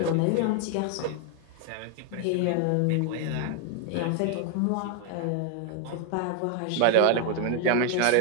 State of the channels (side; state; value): both; different; correlation 0.00